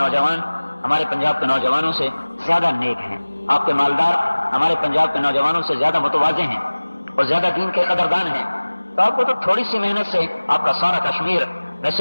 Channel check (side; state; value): both; inverted; correlation -1.00